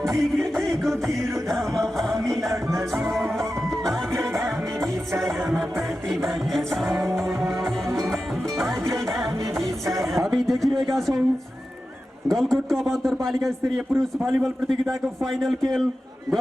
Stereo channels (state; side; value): normal; both; correlation 0.92